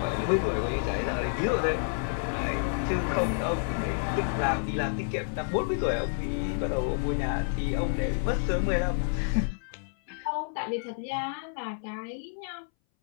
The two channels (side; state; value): right; silent; 58 dB below the other